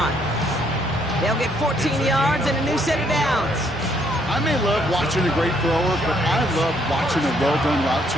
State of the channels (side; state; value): both; normal; correlation 0.69